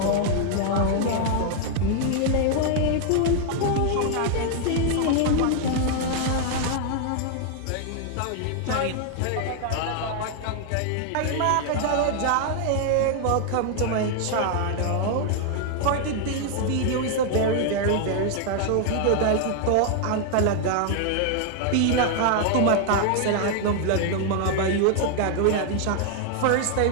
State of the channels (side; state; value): both; different; correlation 0.00